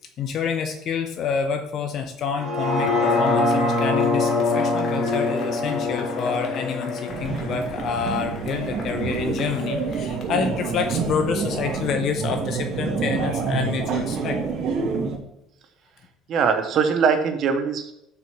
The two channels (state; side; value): normal; both; correlation 0.51